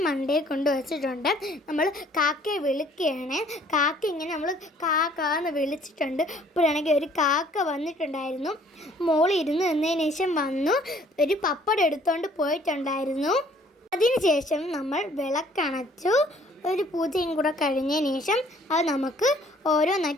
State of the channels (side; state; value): both; normal; correlation 0.58